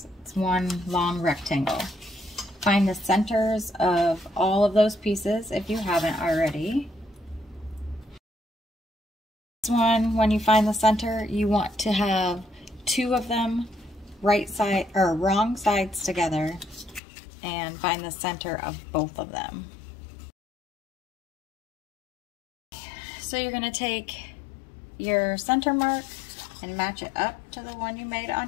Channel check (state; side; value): drops out; right; at 17.0 s